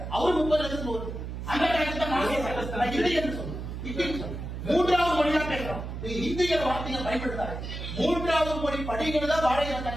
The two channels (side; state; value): right; noise; hum, 7 dB below the sound